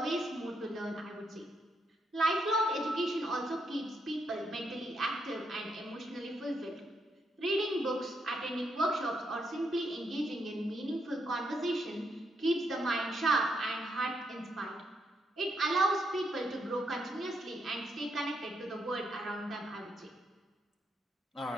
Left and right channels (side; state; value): both; normal; correlation 0.78